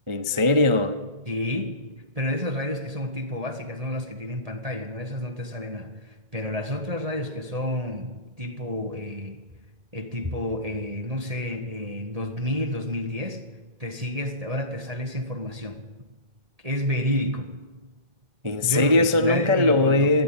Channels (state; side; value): late; left; 1.4 ms